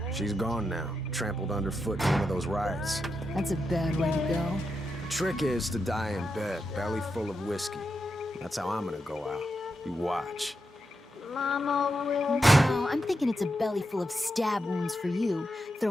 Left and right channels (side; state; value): both; normal; correlation 0.86